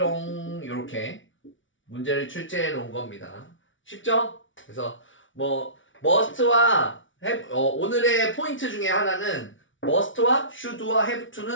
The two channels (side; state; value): right; late; 0.56 ms